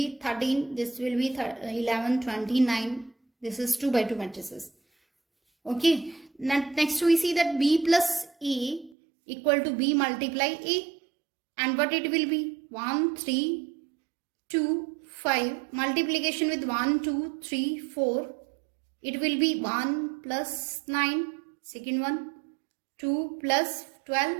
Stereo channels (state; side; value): drops out; left; at 9.0 s